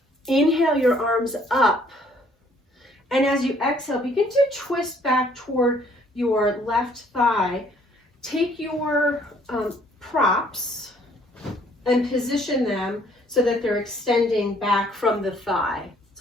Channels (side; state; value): both; normal; correlation 0.62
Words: Inhale your arms up. And as you exhale, begin to twist back toward your left thigh. Take your props and position them so that they're extending back from the thigh.